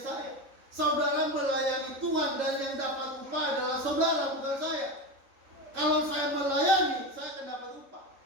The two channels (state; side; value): late; left; 3.7 ms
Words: Saudara melayani Tuhan dan yang dapat upah adalah saudara, bukan saya. Kalau saya melayani, saya akan dapat upah.